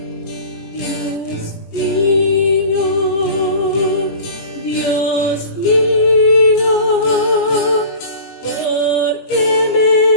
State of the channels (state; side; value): late; right; 18 ms